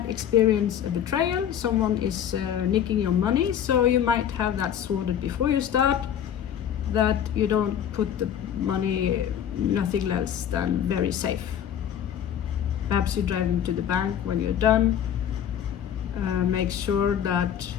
experience a betrayal. Someone is nicking your money, so you might have that sorted before you start, that you don't put the money nothing less than very safe. Perhaps you drive into the bank when you're done. Make sure that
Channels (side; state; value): right; quieter; 9.5 dB